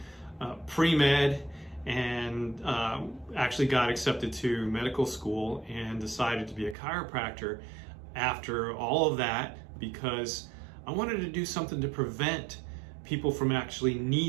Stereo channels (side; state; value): left; drops out; at 6.8 s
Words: pre-med and actually got accepted to medical school and decided to be a chiropractor after all of that because I wanted to do something to prevent people from actually